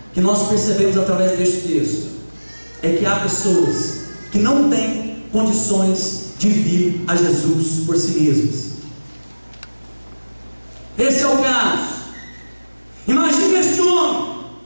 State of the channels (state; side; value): inverted; both; correlation -1.00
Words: que nós percebemos através deste texto. É que há pessoas que não têm condições de vir a Jesus por si mesmas. Esse é o caso. Imagine este homem